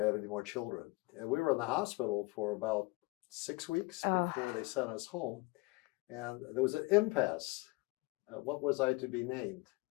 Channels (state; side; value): quieter; right; 25.1 dB